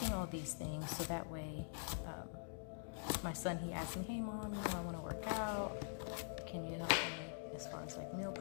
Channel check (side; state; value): right; silent; digital silence